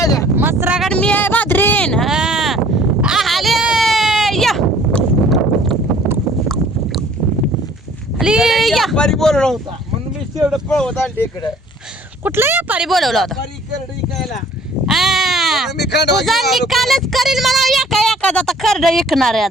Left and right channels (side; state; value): both; normal; correlation 0.55